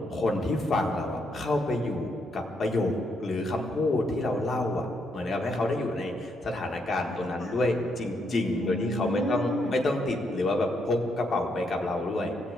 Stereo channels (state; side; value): normal; both; correlation 0.77